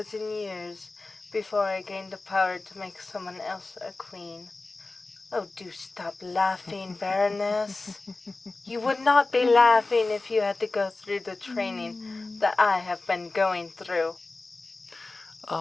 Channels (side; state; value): right; quieter; 3.4 dB